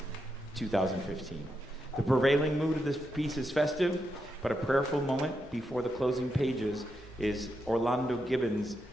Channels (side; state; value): both; normal; correlation 0.84